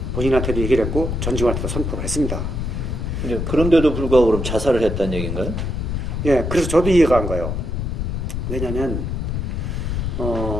본인한테도 얘기를 했고 전직원한테도 선포를 했습니다. 그런데도 불구하고 그럼 자살을 했다는 얘기인가요? 예, 그래서 저도 이해가 안 가요. 왜냐면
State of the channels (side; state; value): left; noise; rumble, 2 dB below the sound